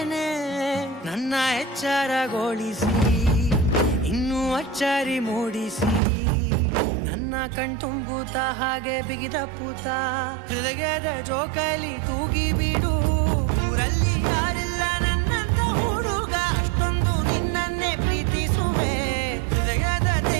ನನ್ನ ಎಚ್ಚರಗೊಳಿಸಿ ಇನ್ನೂ ಅಚ್ಚರಿ ಮೂಡಿಸಿ, ನನ್ನ ಕಣ್ತುಂಬುತ್ತ ಹಾಗೆ ಬಿಗಿದಪ್ಪುತ್ತ ಹೃದಯದ ಜೋಕಾಲಿ ತೂಗಿ ಬಿಡು. ಊರಲ್ಲಿ ಯಾರಿಲ್ಲ ನನ್ನಂತ ಹುಡುಗ, ಅಷ್ಟೊಂದು ನಿನ್ನನ್ನೇ ಪ್ರೀತಿಸುವೆ. ಹೃದಯದ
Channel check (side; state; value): left; drops out; at 6.0 s